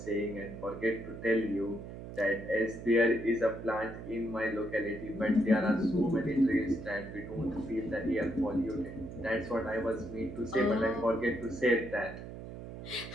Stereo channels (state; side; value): noise; right; hum, 11 dB below the sound